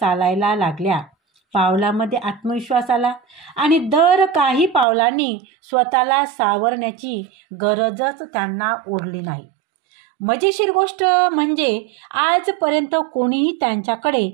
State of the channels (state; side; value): drops out; left; at 4.9 s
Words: लागल्या. पावलामध्ये आत्मविश्वास आला आणि दर काही पावलांनी स्वतःला सावरण्याची गरजच त्यांना उरली नाही. मजेशीर गोष्ट म्हणजे आजपर्यंत कोणीही त्यांच्याकडे